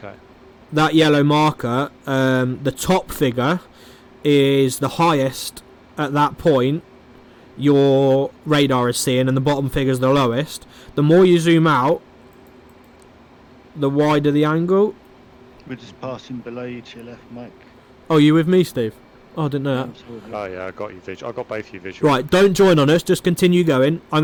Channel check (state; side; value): identical; both; correlation 1.00